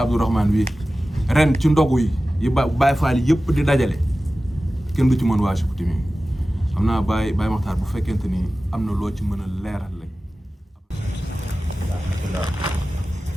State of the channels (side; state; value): both; normal; correlation 0.96